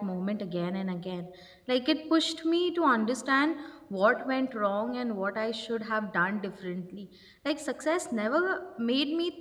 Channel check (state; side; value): identical; both; correlation 1.00